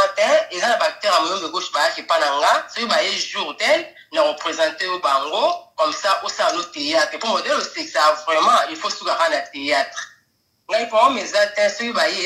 te eza na bactere ya muyombe gauche bayaki pa na nga soki baye jour tel na représente yo bango comme ça osala no théâtre po modele osekisa vraiment il faut sukaka na théâtre ngai po meza te soki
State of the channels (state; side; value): identical; both; correlation 1.00